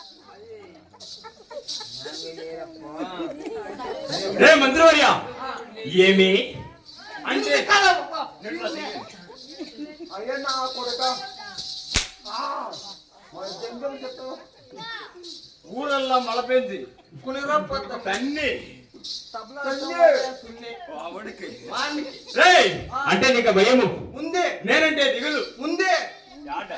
రే మంత్రివర్య ఏమి అంటే అయ్యా నా కొడుక ఊరల్లా మలపేంది కునిరొప్ప తన్ని అంటే నీకు భయము ఉంది నేనంటే దిగులు ఉంది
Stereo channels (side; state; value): both; identical; correlation 1.00